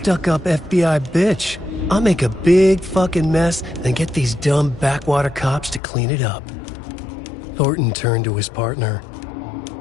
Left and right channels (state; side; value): drops out; right; at 5.8 s